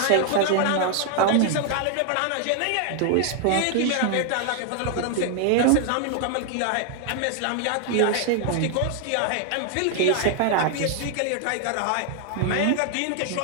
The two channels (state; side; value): different; both; correlation 0.00